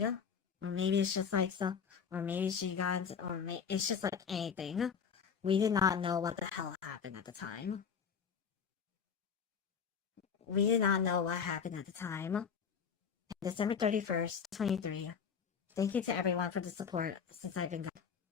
Or maybe it's just like so, or maybe she got into, it's just like anything. We did not know what the hell happened at the time. We did not know what happened at the time. December 31st, 23. Thank you to everyone for the support since I've been gone.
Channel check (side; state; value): right; quieter; 6.7 dB